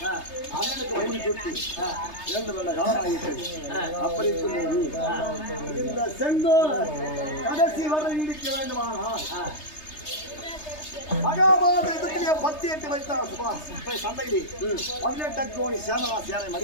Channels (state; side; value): late; right; 3.3 ms